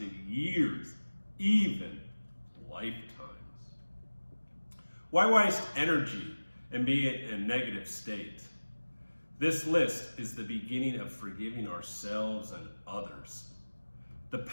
years, even lifetimes. Why waste energy and be in a negative state? This list is the beginning of forgiving ourselves and others. The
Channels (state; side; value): inverted; both; correlation -1.00